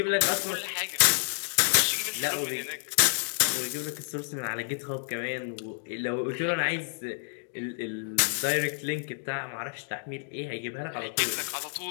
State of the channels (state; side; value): silent; right; digital silence